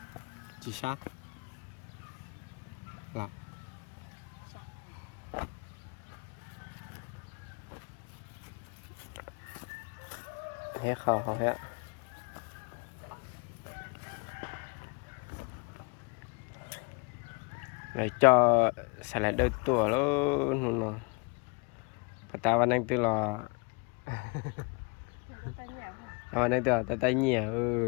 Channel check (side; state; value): right; quieter; 31.8 dB